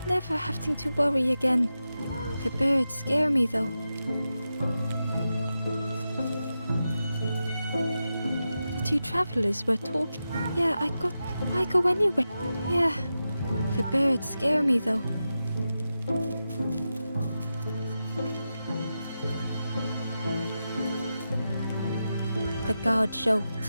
never having to worry again. The birds scare me though. The two travelers were talking. Yeah, why go anywhere? Yeah, the birds scare me though. The guard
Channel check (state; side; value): inverted; both; correlation -0.91